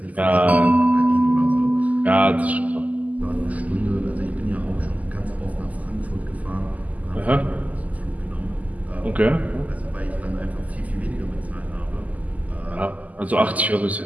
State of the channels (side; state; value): left; late; 0.076 ms